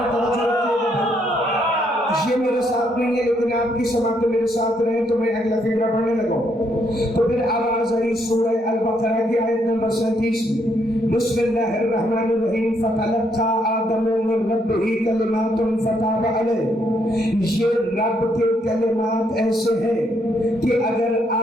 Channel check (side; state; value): both; normal; correlation 0.73